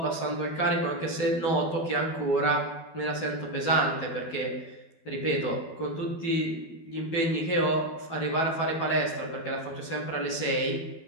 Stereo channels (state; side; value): late; right; 12 ms